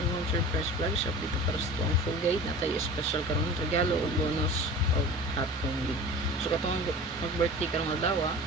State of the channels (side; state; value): both; normal; correlation 0.37